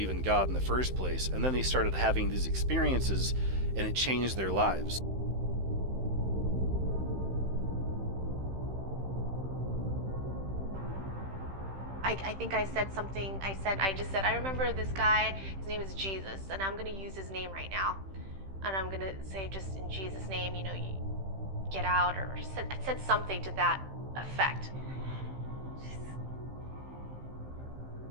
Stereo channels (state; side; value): late; left; 15 ms